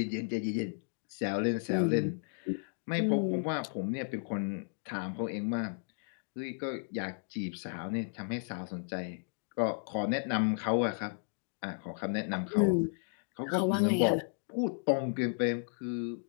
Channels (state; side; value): silent; right; digital silence